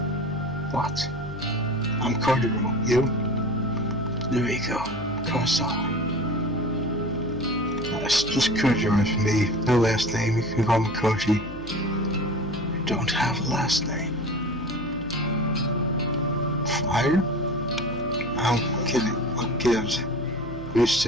What? I'm Kojiro. You? Noriko. Kurosawa. That's just Kojiro for me. No last name. You can call me Koji. You don't have a last name. Fire? I'm kidding. What gives? Used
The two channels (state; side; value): noise; left; hum, 14 dB below the sound